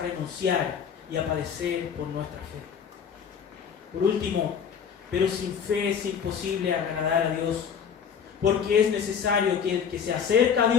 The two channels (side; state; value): right; quieter; 7.4 dB